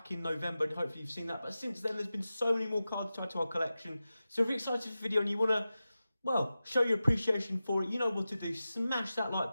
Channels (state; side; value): inverted; both; correlation -0.94